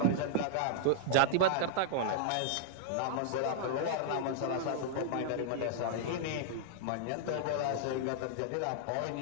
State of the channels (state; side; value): different; both; correlation -0.01